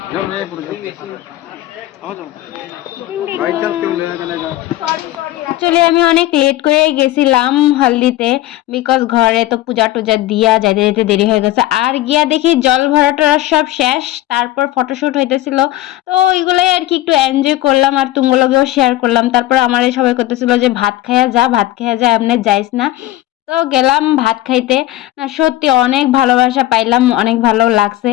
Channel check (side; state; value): right; quieter; 15.4 dB